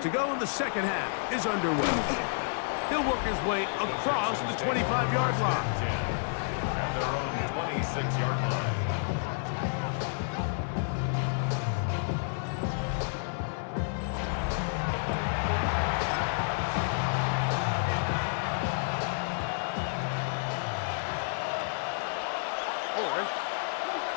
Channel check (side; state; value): right; silent; 57 dB below the other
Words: to go, and the second half is underway. He'll work his way across the 25-yard line. At their own 26-yard line.